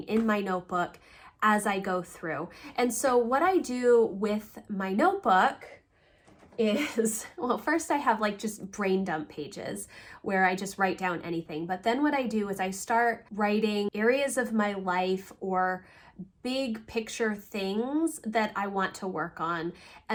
in my notebook as I go through. And so what I do with my notebook is, well, first I have like just brain dump pages where I just write down anything. But then what I do is I start writing areas of my life or big picture things that I want to work on.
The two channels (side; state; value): both; identical; correlation 1.00